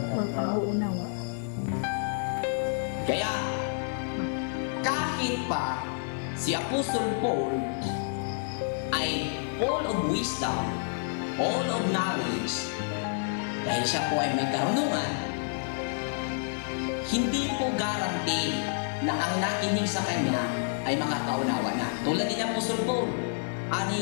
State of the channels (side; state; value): right; silent; digital silence